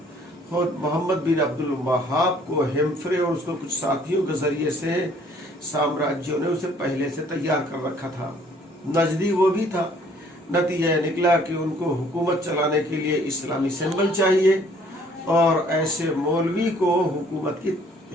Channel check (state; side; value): normal; both; correlation 0.59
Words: خود محمد بن عبد الوہاب کو ہیمفرے اور اس کو کچھ ساتھیوں کے ذریعے سے سامراجیوں نے اسے پہلے سے تیار کر رکھا تھا، نجدی وہ بھی تھا۔ نتیجہ نکلا کہ ان کو حکومت چلانے کے لیے اسلامی سمبل چاہیے اور ایسے مولوی کو حکومت کی